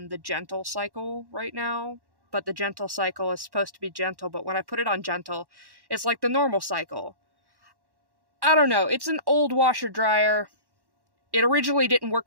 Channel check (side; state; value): left; late; 1.1 ms